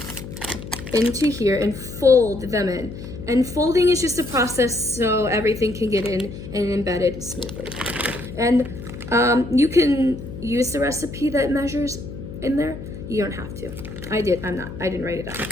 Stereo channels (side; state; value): left; noise; hum, 11 dB below the sound